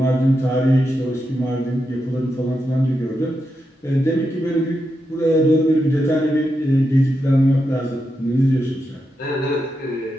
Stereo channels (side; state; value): both; normal; correlation 0.86